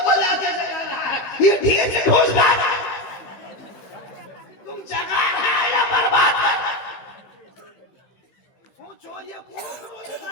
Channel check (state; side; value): late; right; 15 ms